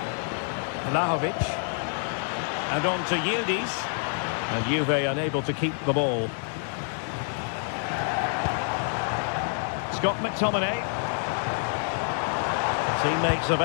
Vlahovic. And on to Yildiz. And Juve unable to keep the ball. Scott McTominay. Teammates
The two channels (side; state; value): right; silent; 60 dB below the other